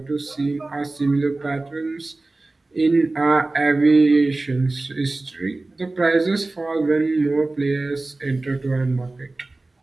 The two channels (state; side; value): quieter; left; 3.1 dB